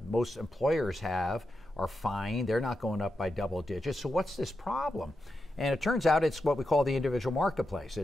most employers have are fine. They're not going up by double digits. So what's this problem? And it turns out it's what we call the individual marketplace.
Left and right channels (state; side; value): normal; both; correlation 0.87